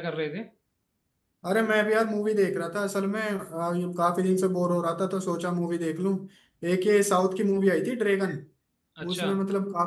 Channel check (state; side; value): identical; both; correlation 1.00